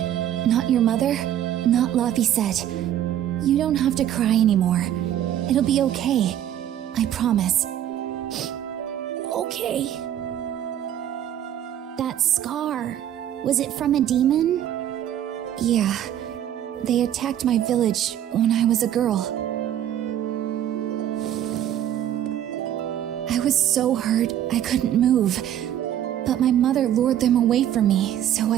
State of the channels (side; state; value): left; quieter; 11.0 dB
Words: not your mother, not Laphicet. You don't have to cry anymore. It'll be okay. I promise. Okay. That scar, was it from a demon? Yeah. They attacked my village when I was a girl. I was so hurt I couldn't move. But my mother lured them away from me so